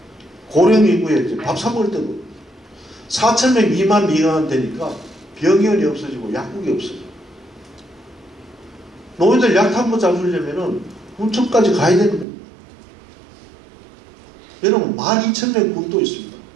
고령 인구에 이제 밥 사 먹을 때도 4,000명 미만 되니까 병원이 없어지고 약국이 없어져. 노인들 약 한 번 잡으려면은 군청까지 가야 되는 겁니다. 여러분 12,000명 군도 있습니다.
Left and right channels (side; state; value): left; drops out; at 12.2 s